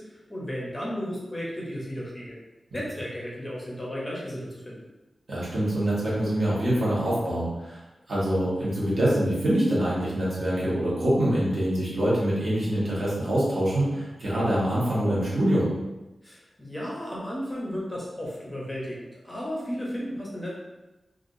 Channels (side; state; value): both; normal; correlation 0.92